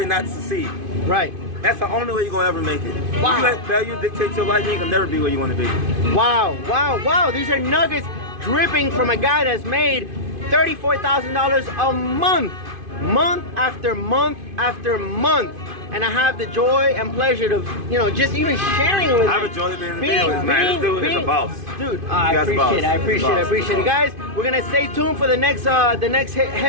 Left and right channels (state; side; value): late; left; 2.5 ms